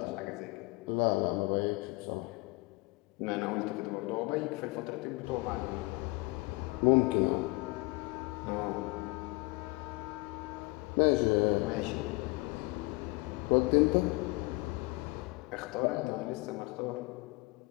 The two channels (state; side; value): quieter; right; 25.2 dB